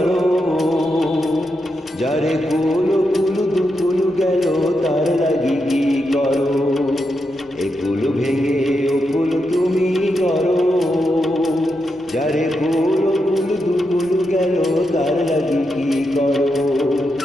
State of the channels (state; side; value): normal; both; correlation 0.85